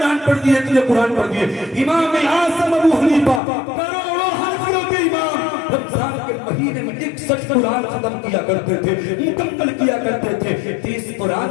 پڑھ دیے، اتنے قرآن پڑھ دیے۔ امام اعظم ابو حنیفہ کروڑوں حنفیوں کے امام رمضان کے مہینے میں 61 قرآن ختم کیا کرتے تھے، مکمل کیا کرتے تھے۔ 30 قرآن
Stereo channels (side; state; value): right; drops out; at 3.4 s